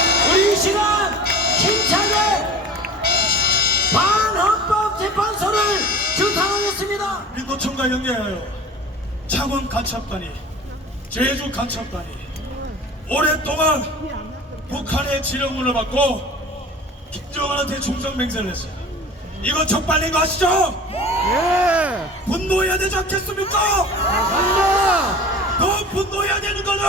우리 이 시간 힘차게 반헌법재판소를 주탄하겠습니다. 민노총과 연계하여 창원 간첩단이 제주 간첩단이 오랫동안 북한의 지령문을 받고 김정은한테 종성맹세를 했어요. 이거 적발린 거 아시죠? 예! 분노해야 되지 않겠습니까? 맞습니다! 더 분노해야 되는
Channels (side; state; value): both; normal; correlation 0.39